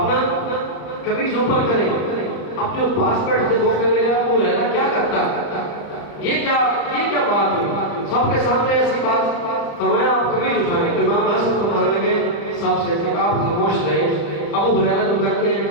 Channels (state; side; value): late; right; 35 ms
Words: قمیض اوپر کریں۔ اب جو پاس بیٹھتے وہ کہنے لگا ابو ہریرہ کیا کرتا ہے، یہ کیا بات ہے، سب کے سامنے ایسی بات؟ فرمایا آپ قمیض اٹھائیں۔ تو امام حسن فرمانے لگے سب سے کہ آپ خاموش رہیں، ابو ہریرہ جو کرتے ہیں